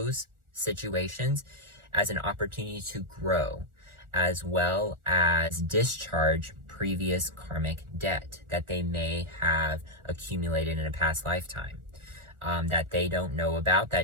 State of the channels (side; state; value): left; late; 1.4 ms